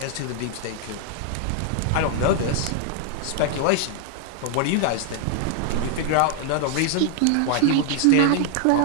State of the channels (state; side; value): different; both; correlation 0.00